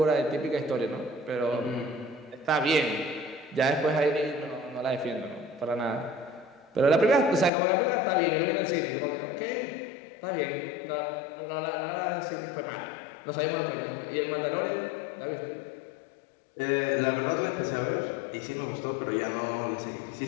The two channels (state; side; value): drops out; right; at 7.5 s